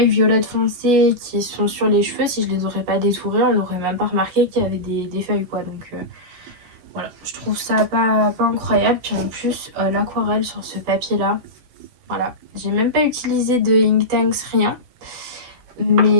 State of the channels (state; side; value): late; left; 12 ms